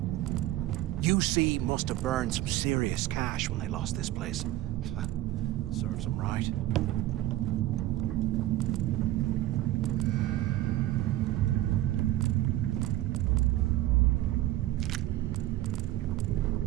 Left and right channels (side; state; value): left; quieter; 15.1 dB